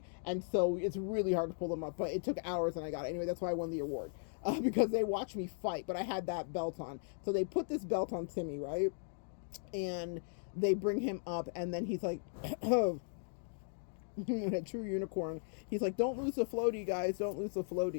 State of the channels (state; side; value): silent; right; digital silence